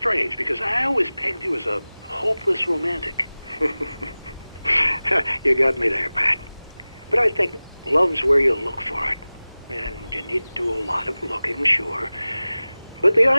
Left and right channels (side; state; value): both; inverted; correlation -0.98